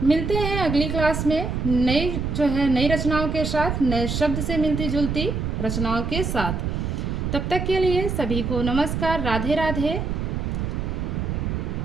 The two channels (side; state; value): right; noise; rumble, 2 dB below the sound